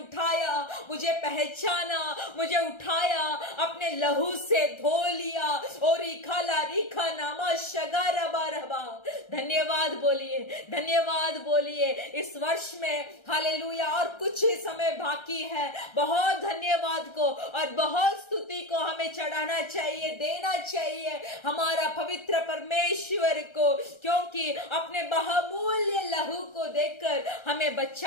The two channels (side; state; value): right; late; 1.3 ms